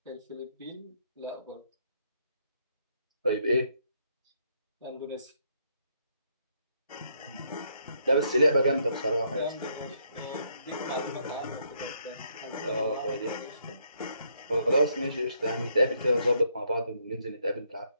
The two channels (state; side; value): inverted; both; correlation -0.73